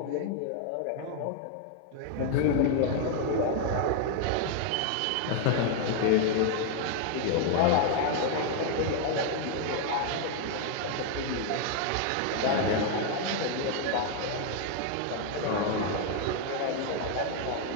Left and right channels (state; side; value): different; both; correlation 0.00